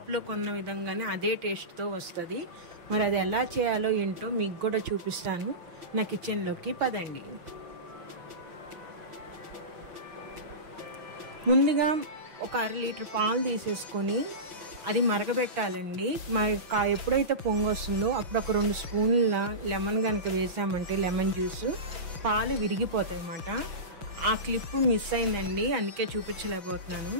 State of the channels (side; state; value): left; late; 6.0 ms